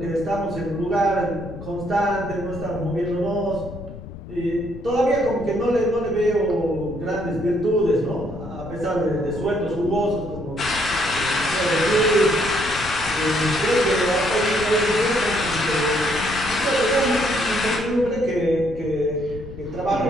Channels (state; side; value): noise; left; rumble, 13 dB below the sound